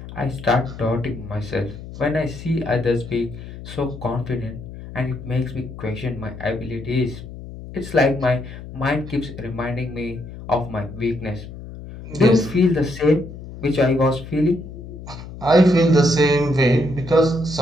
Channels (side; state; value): left; noise; hum, 13 dB below the sound